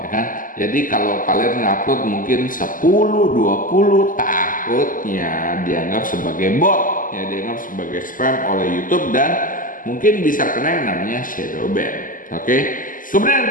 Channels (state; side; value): late; right; 0.39 ms